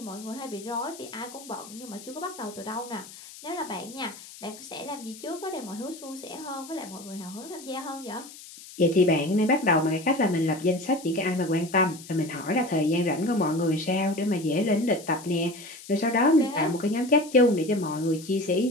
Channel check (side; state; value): left; noise; hiss, 17 dB below the sound